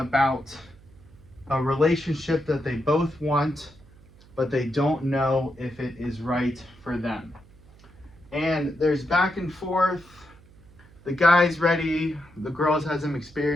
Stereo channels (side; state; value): right; noise; hum, 25 dB below the sound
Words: a relationship that they both want, but they don't know if it is right for them. And there's back and forth. The guy's ready. The girl has some